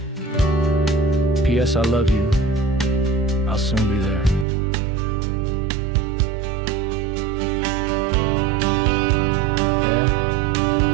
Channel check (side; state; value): left; drops out; at 4.5 s